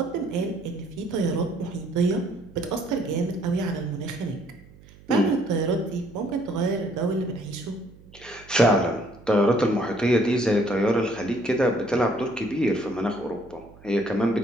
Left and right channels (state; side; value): noise; right; hum, 23 dB below the sound